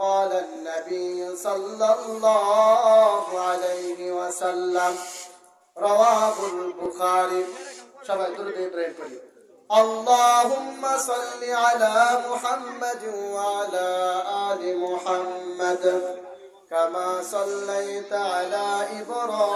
النبي صلى الله عليه وسلم رواه البخاري اللهم صل على محمد وعلى آل محمد كما صليت على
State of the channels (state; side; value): identical; both; correlation 1.00